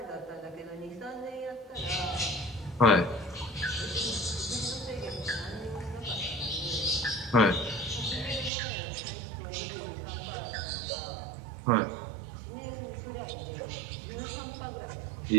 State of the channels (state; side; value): drops out; left; at 8.5 s